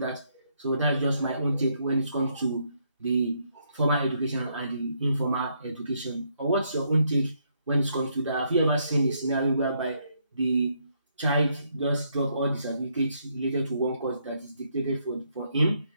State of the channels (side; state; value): both; inverted; correlation -0.74